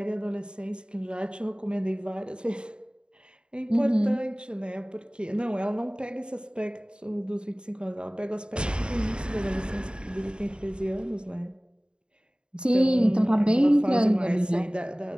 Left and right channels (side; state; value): left; late; 0.051 ms